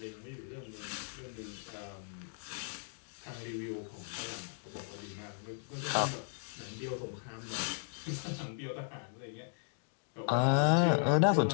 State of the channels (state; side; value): silent; right; digital silence